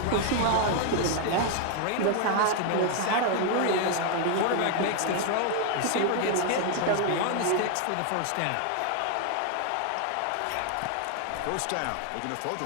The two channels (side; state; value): both; different; correlation 0.00